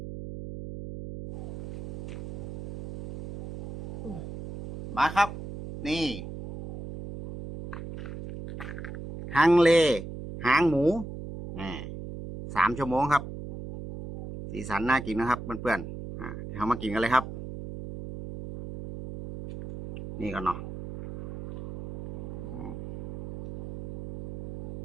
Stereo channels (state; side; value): noise; right; hum, 10 dB below the sound